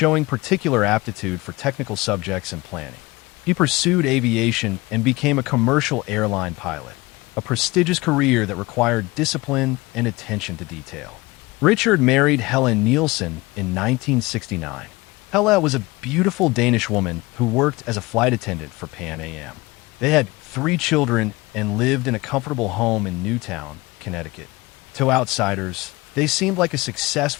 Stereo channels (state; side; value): quieter; right; 22.2 dB